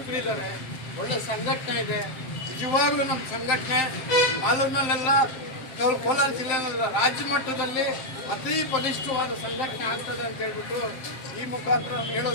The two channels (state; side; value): late; right; 7.6 ms